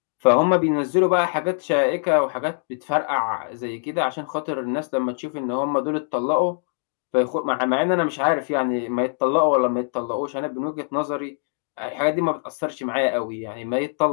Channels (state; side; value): silent; right; digital silence